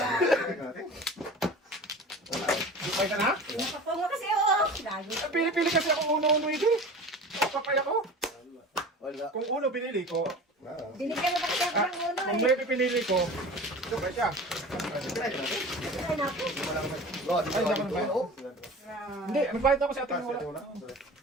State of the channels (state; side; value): normal; both; correlation 0.37